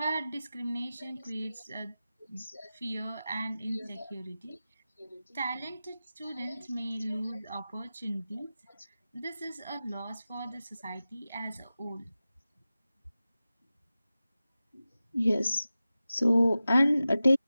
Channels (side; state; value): both; inverted; correlation -0.94